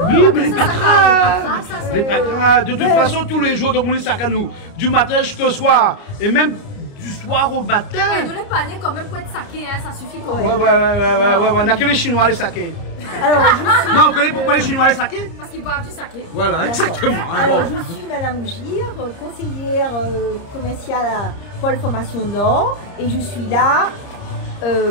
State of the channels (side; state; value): right; late; 30 ms